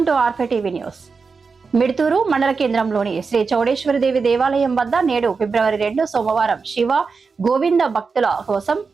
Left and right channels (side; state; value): left; quieter; 4.9 dB